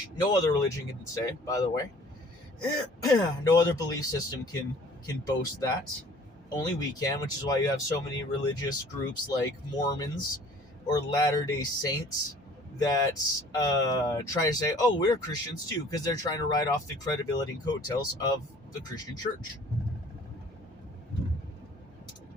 no other religion can say, by the way. No other belief system can boast that. Only we can, which is why you have so many religious groups like Mormons or Latter-day Saints that try to say, oh, we're Christians too, because they're trying to ride off the credibility and coattails of the Christian church.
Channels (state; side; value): normal; both; correlation 0.51